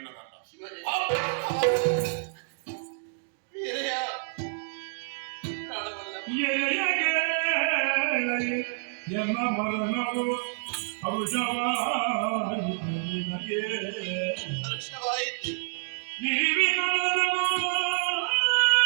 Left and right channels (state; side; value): silent; left; digital silence